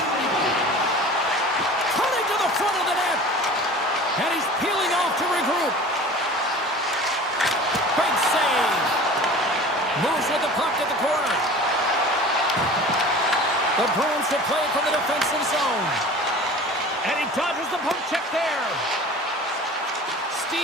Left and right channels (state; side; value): normal; both; correlation 0.40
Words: Cutting to the front of the net. And he's peeling off to regroup. Big save. Moves with the puck at the corner. The Bruins will play it from the defensive zone. And he dodges the poke check there.